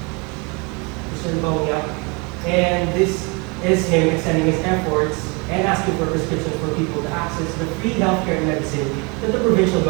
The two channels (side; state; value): left; quieter; 30.0 dB